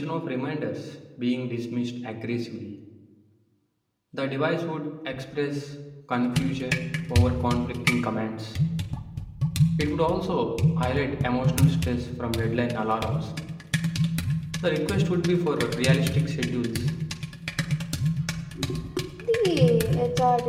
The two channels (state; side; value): identical; both; correlation 1.00